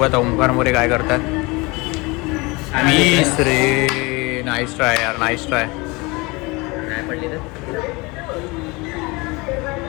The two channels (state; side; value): quieter; right; 25.4 dB